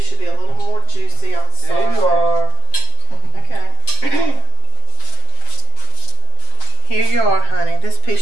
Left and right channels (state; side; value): late; right; 7.6 ms